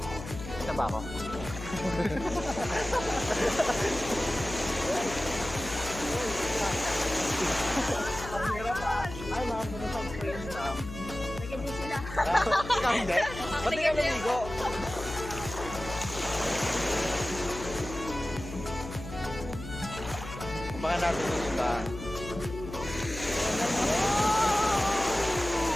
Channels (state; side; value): noise; left; hum, 11 dB below the sound